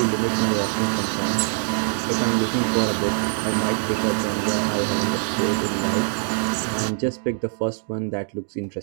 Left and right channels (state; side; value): silent; left; 57 dB below the other